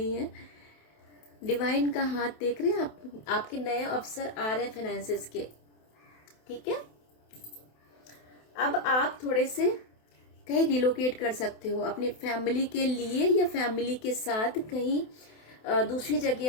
है। डिवाइन का हाथ देख रहे हैं आप, आपके नए अवसर आ रहे हैं फाइनेंसेस के, ठीक है। अब आप थोड़े से कहीं रिलोकेट कर सकते हो अपनी फैमिली के लिए, या फैमिली के साथ कहीं दूसरी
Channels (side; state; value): right; late; 28 ms